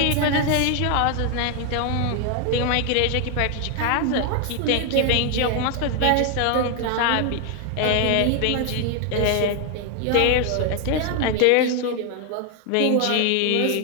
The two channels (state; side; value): different; both; correlation 0.00